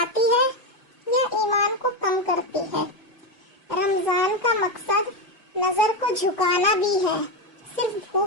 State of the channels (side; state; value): both; normal; correlation 0.11